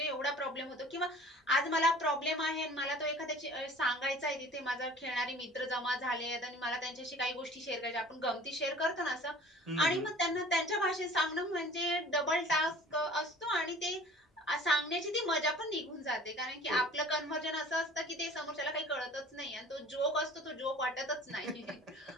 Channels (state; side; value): normal; both; correlation 0.47